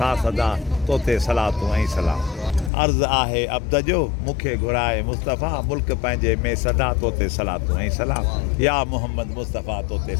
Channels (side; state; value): right; drops out; at 2.7 s